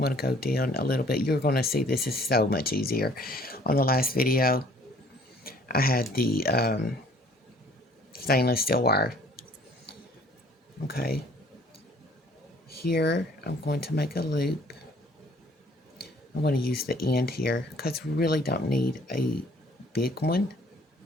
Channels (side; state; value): both; normal; correlation 0.57